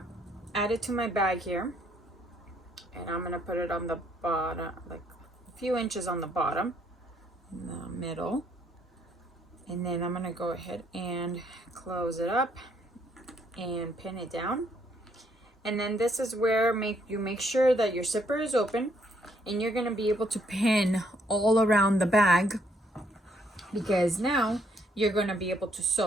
add it to my bag here, and I'm gonna put it on the bottom, like a few inches on the bottom, in the middle, and then I'm gonna go ahead and close it up and pin it down. And then this is where you make sure that your zipper is open, and you're gonna be able to pin all around the bag, because now you're gonna be able to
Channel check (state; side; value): normal; both; correlation 0.70